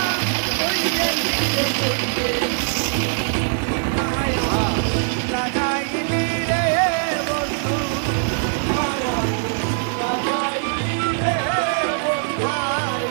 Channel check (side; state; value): left; silent; digital silence